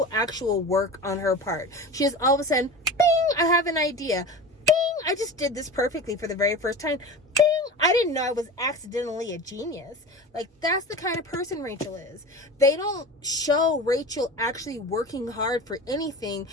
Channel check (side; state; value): both; normal; correlation 0.32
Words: actual work on her part. She just all of a sudden, bing, I have an idea. Bing, I just did this perfectly for the very first time. Bing, I didn't know I was accidentally a genius. Like, that's the kind of person Rachel is. They don't show Rachel actually working hard for anything